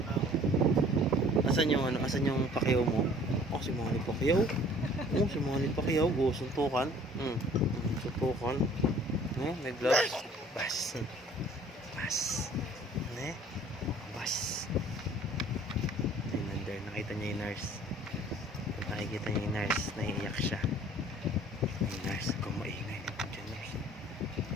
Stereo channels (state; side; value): normal; both; correlation 0.53